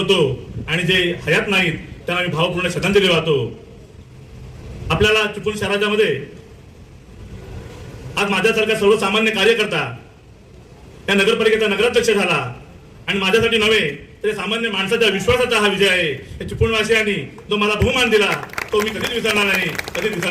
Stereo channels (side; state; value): both; identical; correlation 1.00